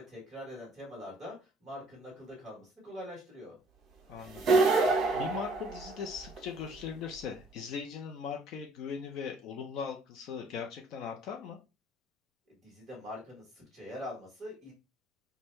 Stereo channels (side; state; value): both; normal; correlation 0.59